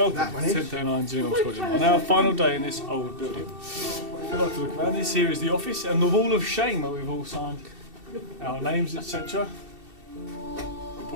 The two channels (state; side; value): late; left; 2.7 ms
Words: to 1039 Gillingham College. On our final day in this old building. If you'd like to look around, this here is the office and the wall of shame where we've all signed our names, etc.